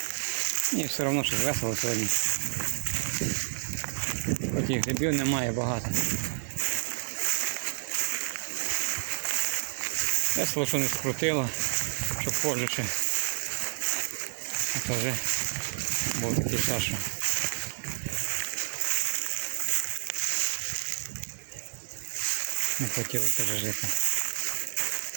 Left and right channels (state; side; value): silent; left; digital silence